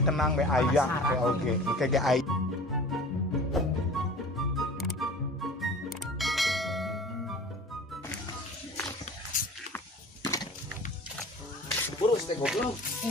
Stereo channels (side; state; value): both; normal; correlation 0.42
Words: tenang be aya teh oge. Kayak aya. Burus teh goblok.